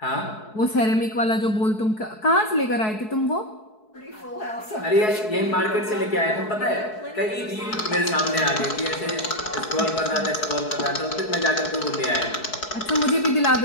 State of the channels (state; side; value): late; right; 4.7 ms